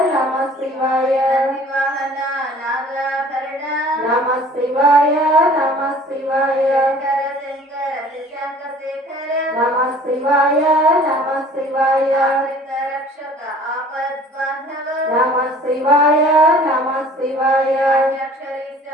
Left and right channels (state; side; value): normal; both; correlation 0.50